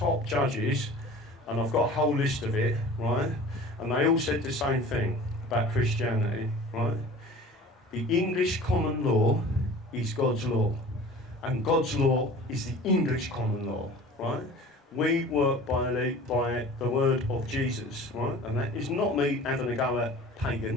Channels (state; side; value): normal; both; correlation 0.42